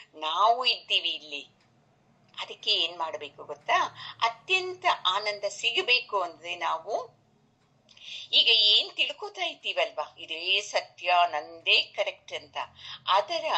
ನಾವು ಇದ್ದೀವಿ ಇಲ್ಲಿ. ಅದಕ್ಕೆ ಏನ್ ಮಾಡ್ಬೇಕು ಗೊತ್ತಾ, ಅತ್ಯಂತ ಆನಂದ ಸಿಗಬೇಕು ಅಂದ್ರೆ ನಾವು ಈಗ ಏನ್ ತಿಳ್ಕೊತಾ ಇದ್ದೀವಲ್ವಾ, ಇದೇ ಸತ್ಯ, ನಂದೇ ಕರೆಕ್ಟ್ ಅಂತ, ಅದರ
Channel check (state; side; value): identical; both; correlation 1.00